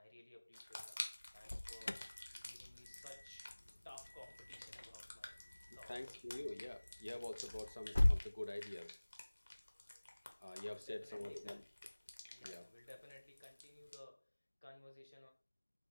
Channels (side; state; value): both; inverted; correlation -1.00